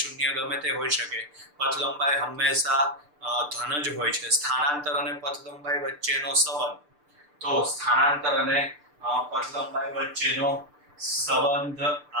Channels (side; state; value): left; late; 6.7 ms